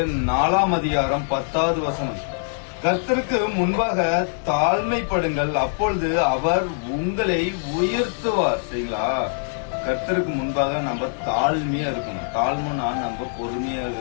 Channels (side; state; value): right; silent; digital silence